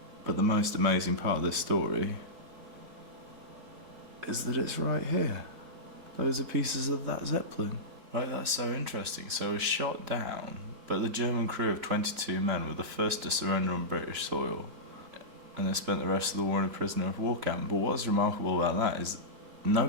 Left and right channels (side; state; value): left; late; 4.0 ms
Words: But the most amazing part of this story is that it's right here. Those are pieces of that Zeppelin. Right, that's so interesting. So it was shot down, but the German crew of 22 men were the first to surrender on British soil, and they spent the rest of the war in a prisoner of war camp. But what's remarkable about that is